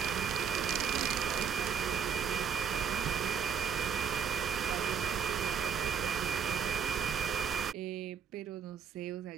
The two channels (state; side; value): quieter; left; 7.4 dB